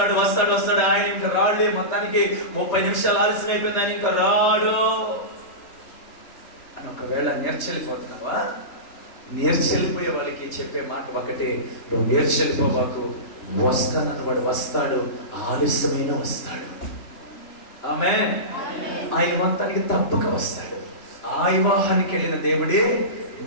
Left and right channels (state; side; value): late; right; 3.4 ms